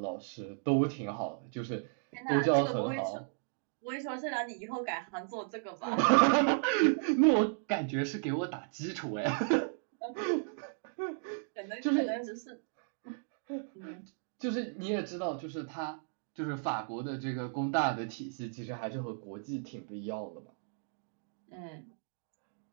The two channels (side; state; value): left; silent; digital silence